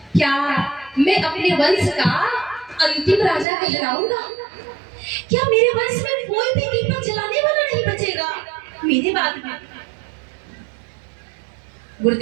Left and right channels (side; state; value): left; drops out; at 3.5 s